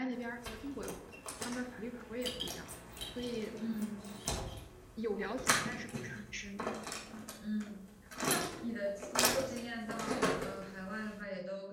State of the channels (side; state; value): both; identical; correlation 1.00